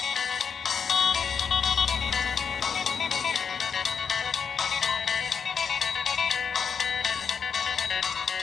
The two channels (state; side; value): quieter; right; 6.5 dB